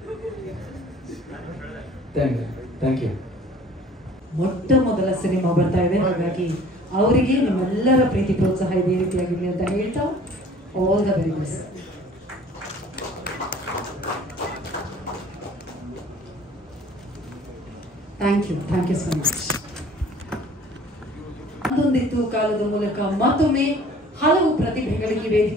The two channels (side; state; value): both; normal; correlation 0.51